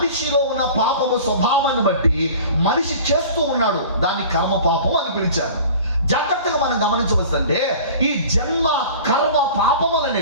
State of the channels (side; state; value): both; inverted; correlation -0.42